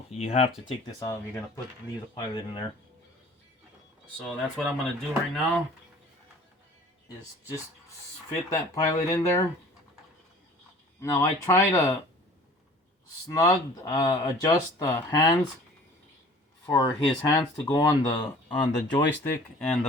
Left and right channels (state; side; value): normal; both; correlation 0.48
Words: you have to take this out if you're gonna leave the pilot in there. So that's what I'm gonna do right now, is just fit that pilot in there. Now I try to adjust the hands for his hands to go on the joystick and